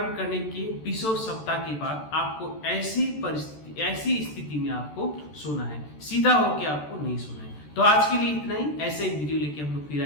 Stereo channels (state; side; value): late; right; 13 ms